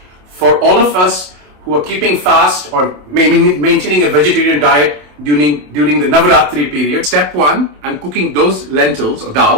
for all of us who are keeping fast or maintaining a vegetarian diet during the Navratri period. Step 1, I'm cooking those lentils or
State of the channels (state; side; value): late; left; 27 ms